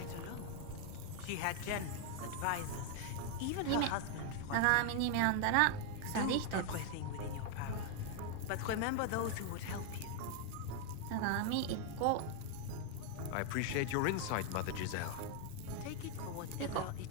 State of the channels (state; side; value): different; both; correlation 0.00